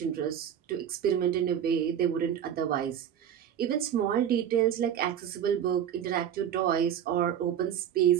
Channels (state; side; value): quieter; left; 9.4 dB